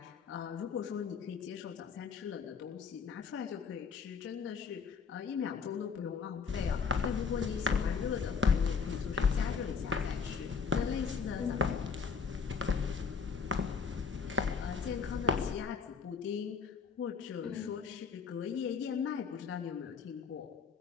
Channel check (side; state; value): right; quieter; 5.8 dB